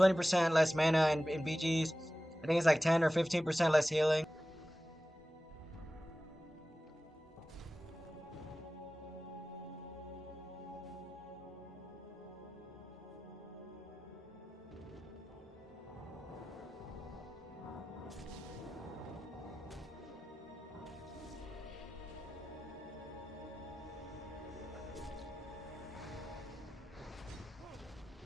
less mana in BGs. I think it's like 10 or 15% less healing.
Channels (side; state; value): both; normal; correlation 0.95